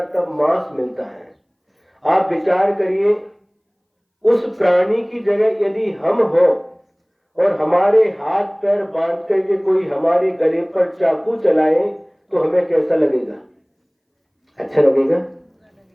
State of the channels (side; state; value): both; identical; correlation 1.00